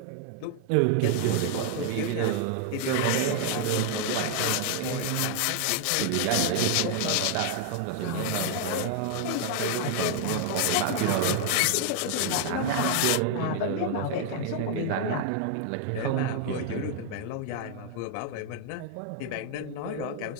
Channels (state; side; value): different; both; correlation 0.00